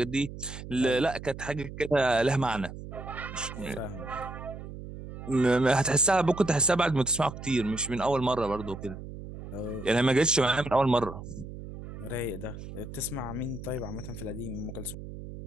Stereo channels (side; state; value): right; noise; hum, 11 dB below the sound